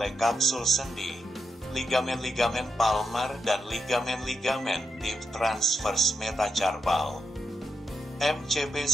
kapsul sendi, ligamen palmar dan ligamen deep transverse metacarpal. MCP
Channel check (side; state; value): both; normal; correlation 0.84